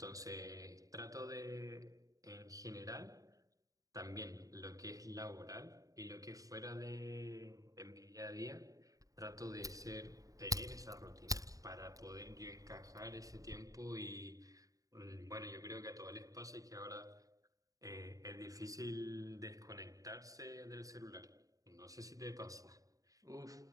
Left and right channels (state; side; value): late; left; 0.17 ms